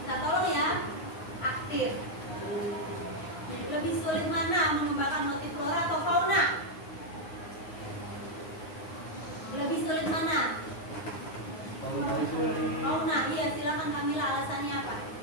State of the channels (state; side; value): late; right; 9.6 ms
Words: bisa tolong ya, aktif. Lebih sulit mana mengembangkan motif flora atau fauna? Lebih sulit mana? Fauna. Iya, silakan Kamila, alasannya apa?